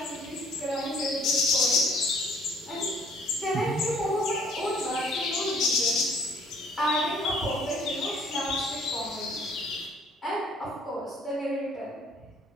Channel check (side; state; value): both; normal; correlation 0.59